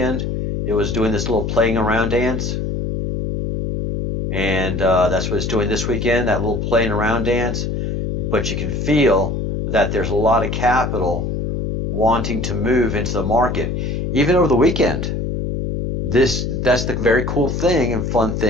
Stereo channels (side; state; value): left; noise; hum, 2 dB below the sound